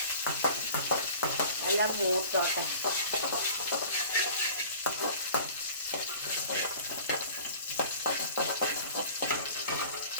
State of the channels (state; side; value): inverted; both; correlation -0.46